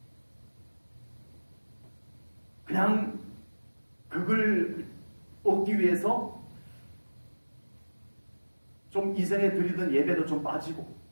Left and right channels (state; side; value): inverted; both; correlation -1.00